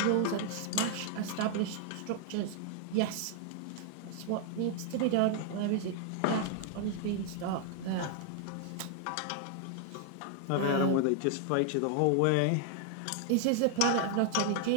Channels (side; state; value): both; different; correlation 0.00